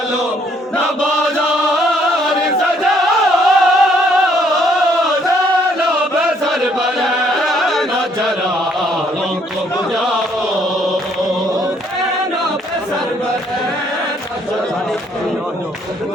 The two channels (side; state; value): both; normal; correlation 0.66